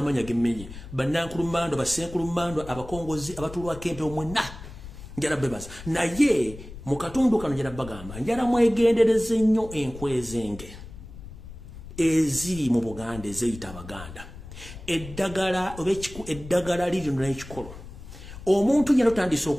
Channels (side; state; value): left; noise; rumble, 14 dB below the sound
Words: gemenye banankulumando basenkulumando abakongozi abatulwako empewo mwenna njala bebaza naye mu katundu kano njala bagamba njala mwegendereze nnyo enkwezenge eziri mu Buganda ezeyita Abaganda eddagala liri n'ekikolo omuntu nyalo tandise